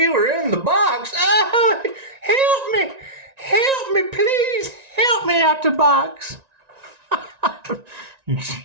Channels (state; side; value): late; left; 1.9 ms